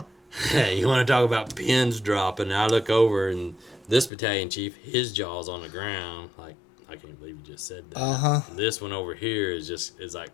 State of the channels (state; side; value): drops out; right; at 4.1 s